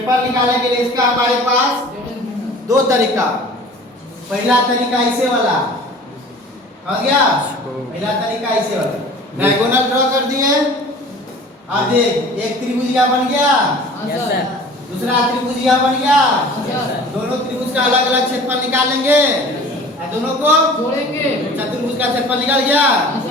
निकालने के लिए इसका हमारे पास दो तरीका, पहला तरीका ऐसे वाला हो गया, पहला तरीका ऐसे वाला डायगोनल ड्रॉ कर दिए। अब देख एक त्रिभुजिया बन गया, यस सर, दूसरा त्रिभुजिया बन गया, यस दोनों त्रिभुज का अलग अलग क्षेत्रफल निकाल लेंगे और दोनों को जोड़ेंगे, चतुर्भुज का क्षेत्रफल निकल गया,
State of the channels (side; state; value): both; normal; correlation 0.44